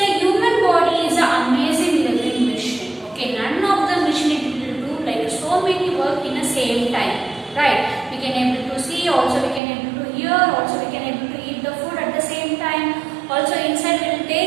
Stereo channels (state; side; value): drops out; left; at 9.6 s